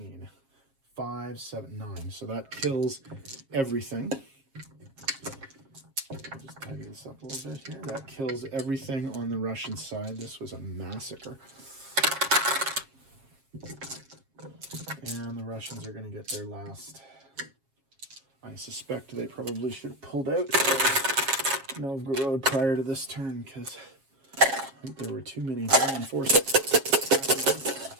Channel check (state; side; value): late; left; 7.4 ms